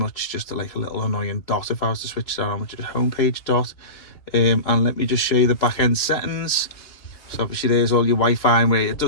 just like a little annoying dot if I was to switch that on, which is a homepage dot. And let me just show you the back end settings. So obviously there's all your Wi-Fi, and where it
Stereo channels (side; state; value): right; late; 3.0 ms